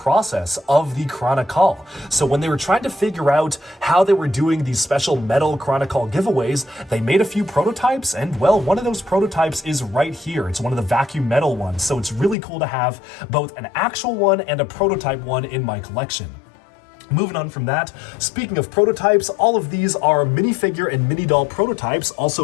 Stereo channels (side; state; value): right; drops out; at 12.4 s